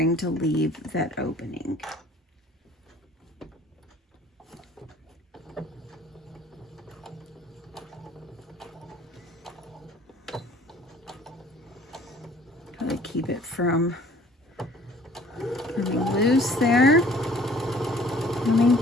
to leave that opening. Gotta keep it from coming almost there. Coming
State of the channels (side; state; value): both; normal; correlation 0.54